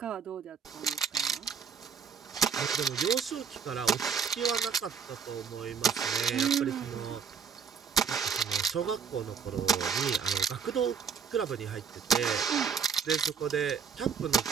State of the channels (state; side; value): quieter; left; 6.6 dB